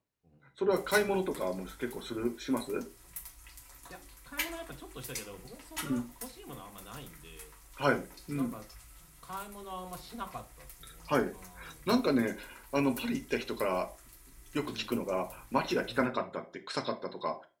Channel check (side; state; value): both; identical; correlation 1.00